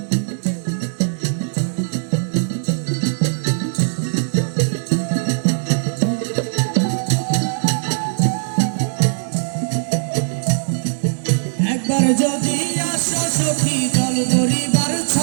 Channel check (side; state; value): left; silent; 61 dB below the other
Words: একবার যদি আসো সখী জল ধরিবার